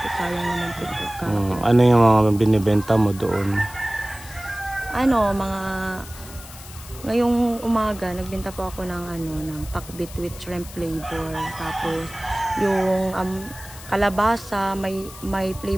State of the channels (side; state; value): left; noise; hiss, 17 dB below the sound